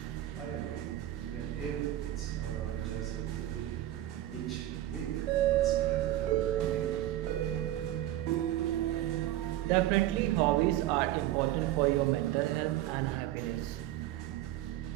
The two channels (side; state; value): left; quieter; 13.9 dB